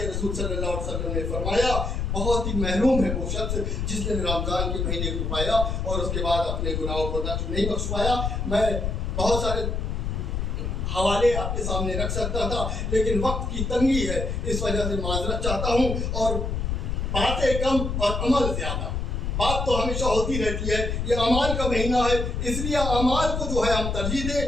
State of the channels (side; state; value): left; noise; rumble, 1 dB below the sound